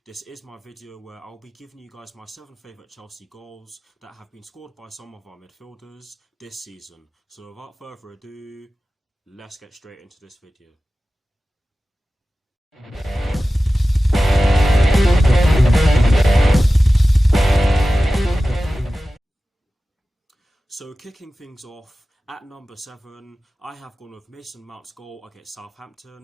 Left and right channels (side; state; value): both; normal; correlation 0.95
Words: This is my video where I'll be giving you guys my 7 favourite Chelsea goals that have been scored by some of our midfielders this season. So without further ado, let's get straight into this video. So kicking things off, at number 7, I have gone with Mason Mount's goal against